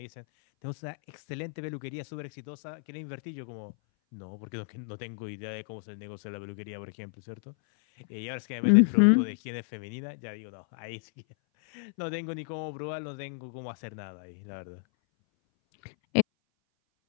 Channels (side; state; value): right; silent; 56 dB below the other